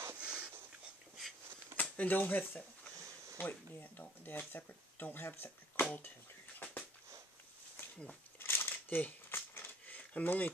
And don't have don't have separate coal tenders. I'm only a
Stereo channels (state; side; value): normal; both; correlation 0.57